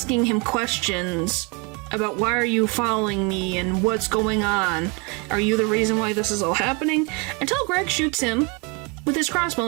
him questions about why are you following me and what's going on? Are you the reason why this is all happening? Until Greg shoots him with his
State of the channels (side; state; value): left; quieter; 30.9 dB